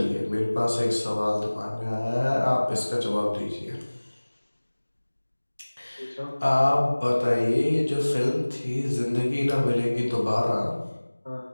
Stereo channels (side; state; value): both; inverted; correlation -1.00